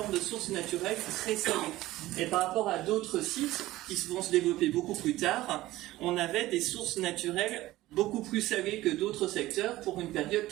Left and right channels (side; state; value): left; quieter; 16.8 dB